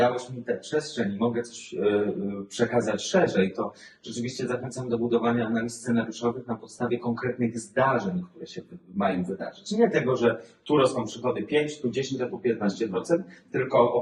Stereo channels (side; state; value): both; identical; correlation 1.00